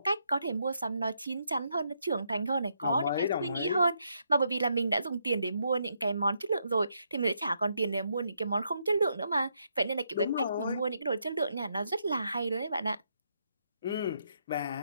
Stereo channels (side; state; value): both; inverted; correlation -0.77